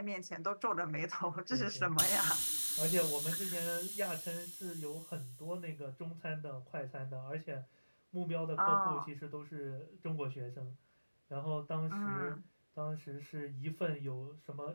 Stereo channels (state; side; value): inverted; both; correlation -1.00